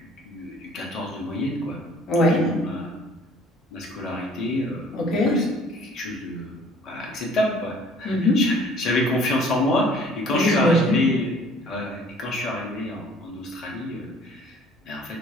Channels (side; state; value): both; normal; correlation 0.54